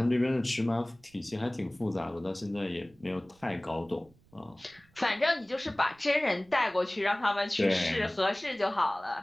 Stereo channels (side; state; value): right; noise; rumble, 30 dB below the sound